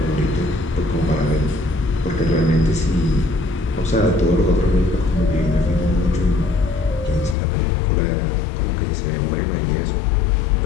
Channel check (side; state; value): right; drops out; at 7.4 s